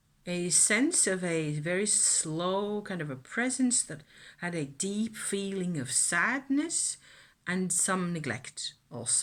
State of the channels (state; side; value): identical; both; correlation 1.00